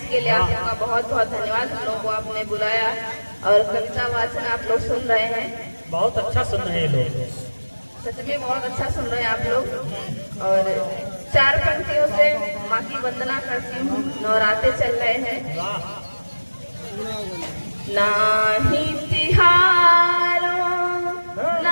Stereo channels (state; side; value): inverted; both; correlation -1.00